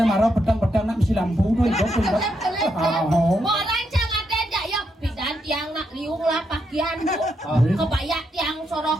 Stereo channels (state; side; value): normal; both; correlation 0.80